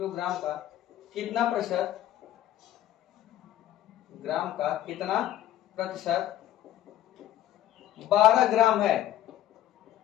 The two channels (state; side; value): quieter; right; 12.7 dB